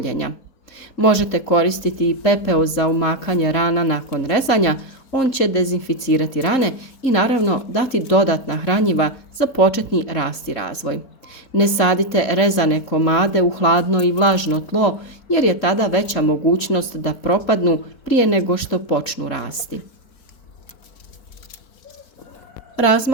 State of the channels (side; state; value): right; late; 3.7 ms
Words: Možete koristiti i pepeo za umakanje rana nakon rezanja, on će dezinficirati rane i naravno dati dodatna hranjiva za početni rast i razvoj. Ne sadite rezane komade u hladno i vlažno tlo jer je tada veća mogućnost da propadnu prije nego što počnu rasti.